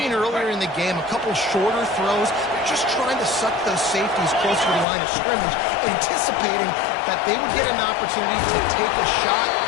earlier in the game a couple shorter throws. They're just trying to suck those safeties closer to the line of scrimmage, anticipating that they would get an opportunity to take a shot.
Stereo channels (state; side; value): drops out; right; at 4.9 s